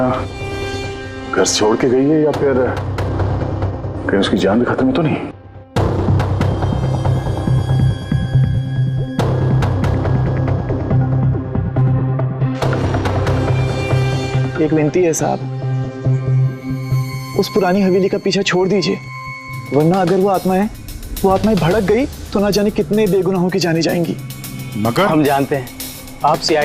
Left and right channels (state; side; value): identical; both; correlation 1.00